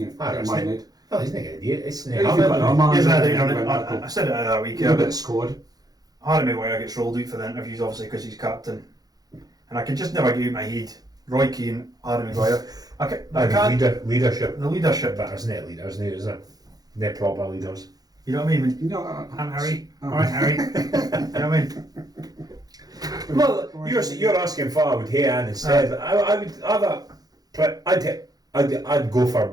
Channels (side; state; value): left; late; 0.19 ms